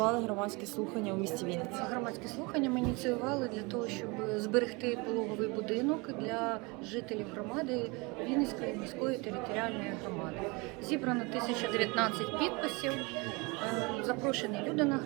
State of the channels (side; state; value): left; quieter; 27.2 dB